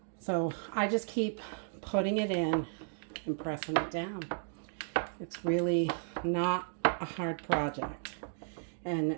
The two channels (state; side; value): silent; left; digital silence